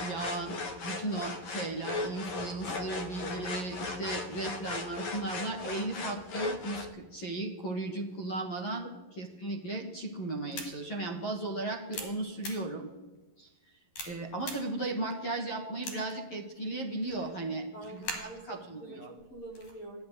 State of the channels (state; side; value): late; right; 11 ms